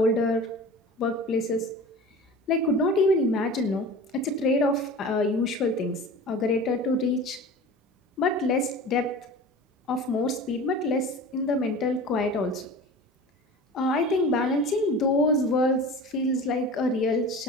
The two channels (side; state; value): both; normal; correlation 0.37